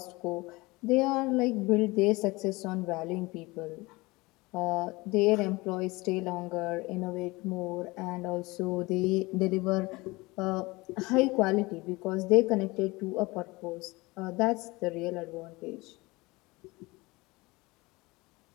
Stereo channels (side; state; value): right; quieter; 22.8 dB